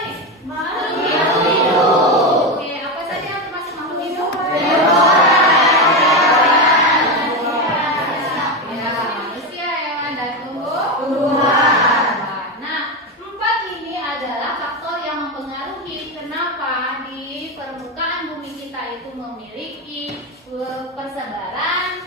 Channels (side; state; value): both; normal; correlation 0.14